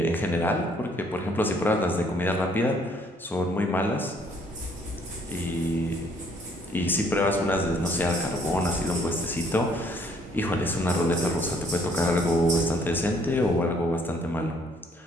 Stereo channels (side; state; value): both; normal; correlation 0.64